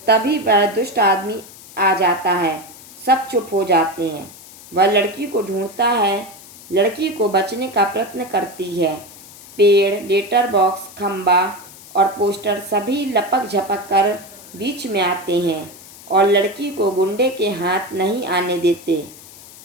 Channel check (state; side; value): noise; left; hiss, 19 dB below the sound